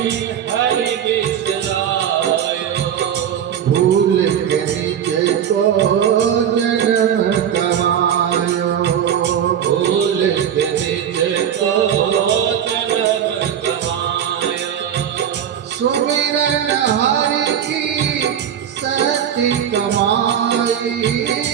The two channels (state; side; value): quieter; left; 9.1 dB